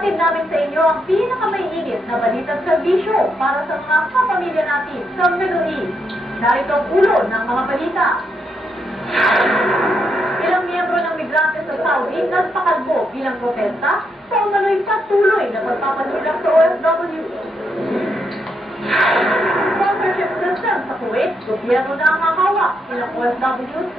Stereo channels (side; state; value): both; normal; correlation 0.79